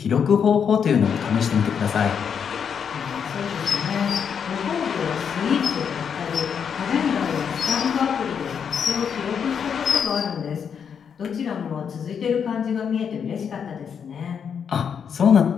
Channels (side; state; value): right; quieter; 7.2 dB